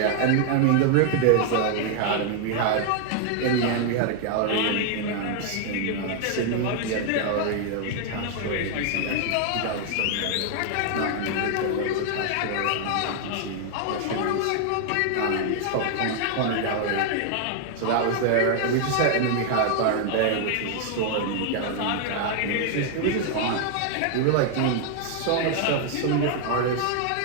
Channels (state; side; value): different; both; correlation 0.00